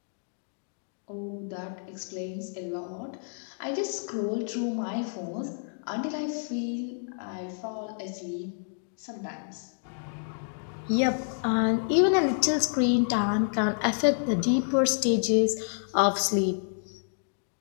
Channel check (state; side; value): silent; right; digital silence